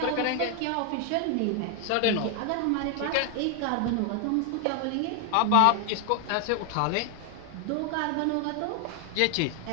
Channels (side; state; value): both; different; correlation 0.00